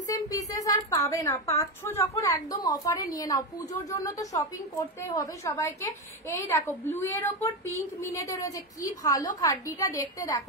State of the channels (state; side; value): normal; both; correlation 0.12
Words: পিসেস আর পাবে না। পাচ্ছ যখন একদম অফারে নিয়ে নাও, পুজোর জন্য তো শপিং করতেই হবে সবাইকে। এই দেখো ব্লু এর ওপর পিঙ্ক মিনেতে রয়েছে, কি ভালো খাড্ডিটা দেখতে,